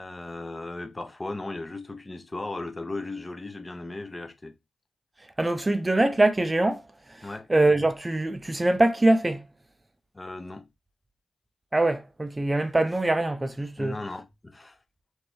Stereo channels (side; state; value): both; normal; correlation 0.97